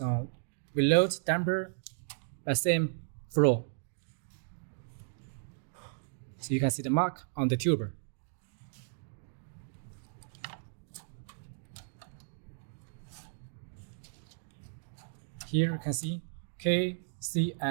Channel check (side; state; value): left; silent; digital silence